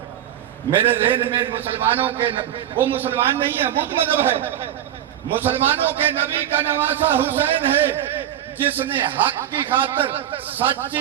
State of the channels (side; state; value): left; quieter; 11.3 dB